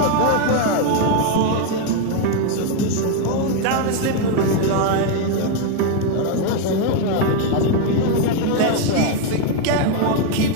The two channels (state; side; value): different; both; correlation 0.01